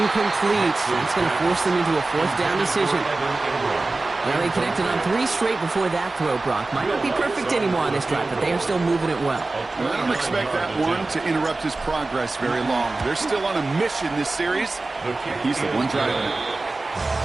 That's going to force them into a fourth down decision. Well, they connected on 3 straight before that throw, Brock. Might not be perfect anymore on this drive, but they are still moving it well. I don't expect that one to interrupt his progress very long. They're still on a mission this series. He's the one driving it.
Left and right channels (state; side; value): quieter; left; 3.3 dB